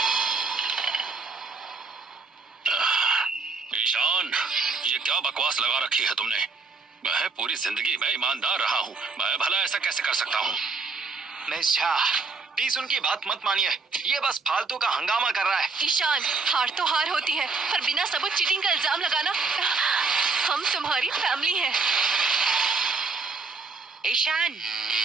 ईशान, ये क्या बकवास लगा रखी है तुमने? मैं पूरी जिंदगी में ईमानदार रहा हूँ, मैं भला ऐसा कैसे कर सकता हूँ? मिस शाह प्लीज उनकी बात मत मानिए, ये बस फालतू का हंगामा कर रहा है। ईशान, हार तो हार होती है पर बिना सबूत चीटिंग का इल्जाम लगाना, हम तुम्हारी फैमिली हैं। ईशान,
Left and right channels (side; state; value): left; quieter; 4.3 dB